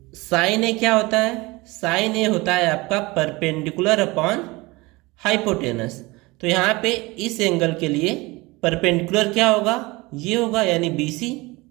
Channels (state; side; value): quieter; left; 22.9 dB